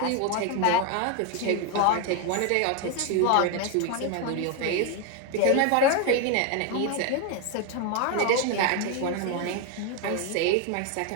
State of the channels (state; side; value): different; both; correlation 0.01